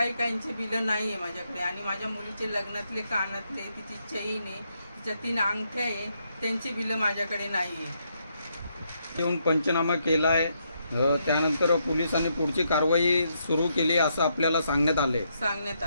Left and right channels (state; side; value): inverted; both; correlation -0.77